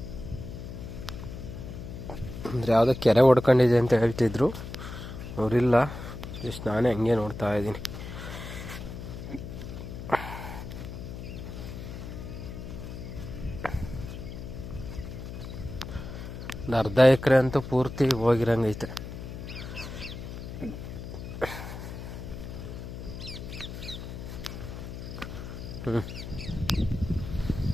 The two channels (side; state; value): left; noise; hum, 9 dB below the sound